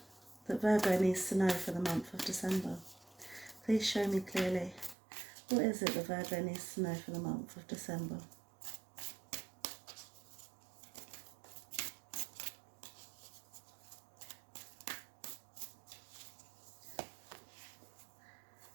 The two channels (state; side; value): drops out; left; at 5.0 s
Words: that Virgo needs to know for the month of December. Please show me clearly. What is it that Virgo needs to know for the month of December?